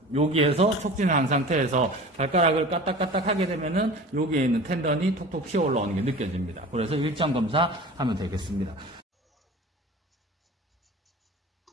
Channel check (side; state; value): both; normal; correlation 0.38